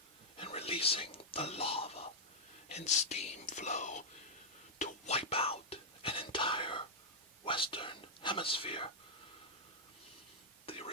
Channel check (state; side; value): normal; both; correlation -0.06